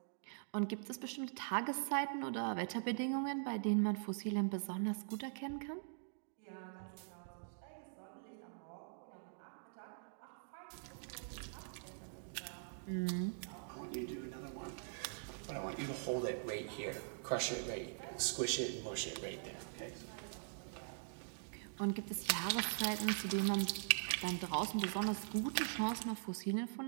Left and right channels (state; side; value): silent; left; digital silence